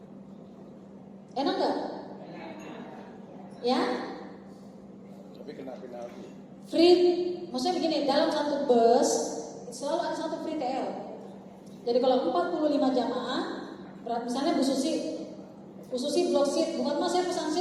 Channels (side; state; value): both; identical; correlation 1.00